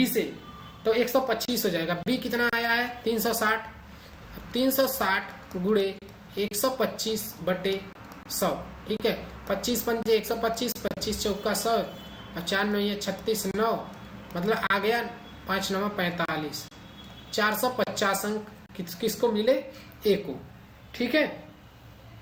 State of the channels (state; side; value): identical; both; correlation 1.00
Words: से, तो 125 हो जाएगा, बी कितना आया है 360, 360 गुणे 125 बटे 100। ठीक है, 25 पंजे 125, 25 चौका 100, और 4 9 36 9, मतलब आ गया 5 9 45, 450 अंक किसको मिले ए को। ठीक है,